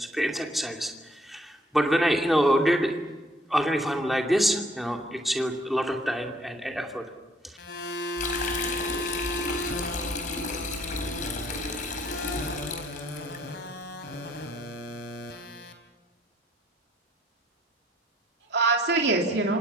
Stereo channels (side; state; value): both; normal; correlation 0.62